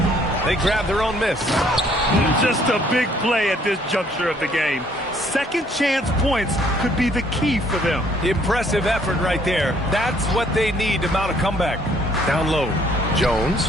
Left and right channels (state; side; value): normal; both; correlation 0.63